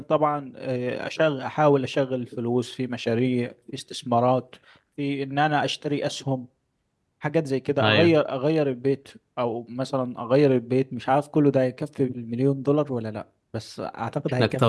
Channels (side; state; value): both; identical; correlation 1.00